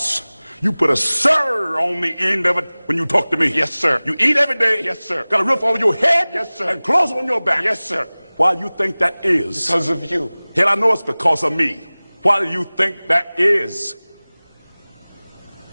you put a sir on the end of it when you talk to me. Yes, sir. You eat every day. Yes, sir. Got a roof over your head. Yes, sir. And clothes on your back. Yes, sir. Why you think that is? Because of you. Hell, I know it's because of me. Why do you think that is?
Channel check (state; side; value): inverted; both; correlation -0.99